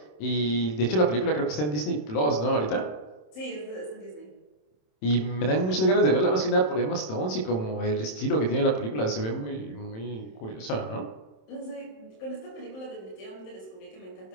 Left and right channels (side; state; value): right; late; 27 ms